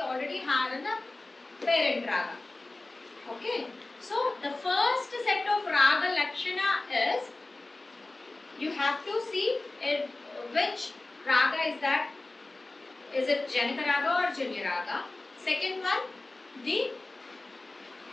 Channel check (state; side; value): quieter; right; 3.0 dB